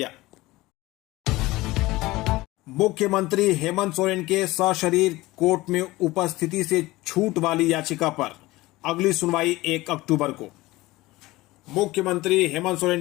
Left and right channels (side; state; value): right; quieter; 19.4 dB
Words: मुख्यमंत्री हेमंत सोरेन के सशरीर कोर्ट में उपस्थिति से छूट वाली याचिका पर अगली सुनवाई 1 अक्टूबर को। मुख्यमंत्री हेमंत सोरेन